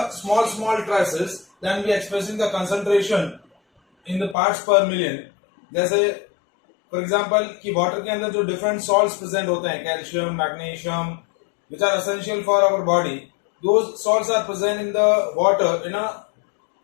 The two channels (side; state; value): right; drops out; at 4.4 s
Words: small traces. Then we are expressing the concentration in the parts per million. जैसे for example कि वाटर के अंदर जो different salts present होते हैं, calcium, magnesium, which are essential for our body, those salts are present in the water in a